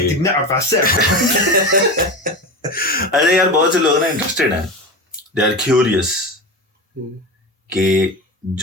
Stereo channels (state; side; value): normal; both; correlation 0.25